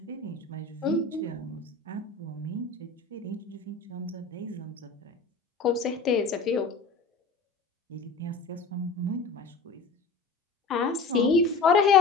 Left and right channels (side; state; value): right; quieter; 4.1 dB